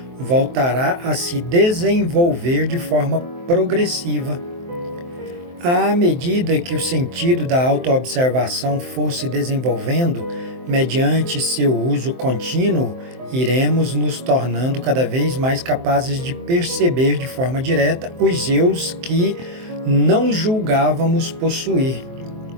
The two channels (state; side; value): late; left; 23 ms